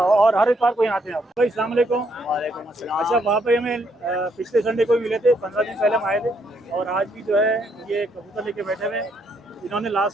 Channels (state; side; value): normal; both; correlation 0.73